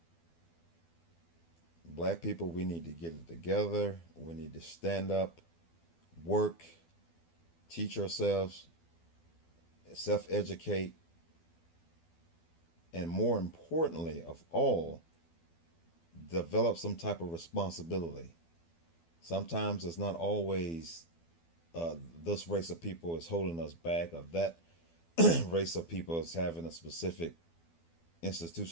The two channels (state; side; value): late; right; 12 ms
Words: Black people, we need to get it together. We need to stand up, work, teach ourselves, self-educate, and more importantly of all, develop some type of responsibility. Sometimes it's not always this race of people is holding us back, or that race of people is having a specific